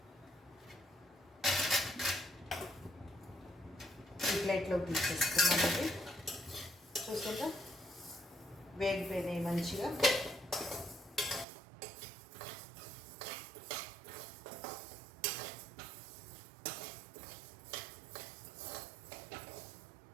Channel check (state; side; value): drops out; left; at 11.5 s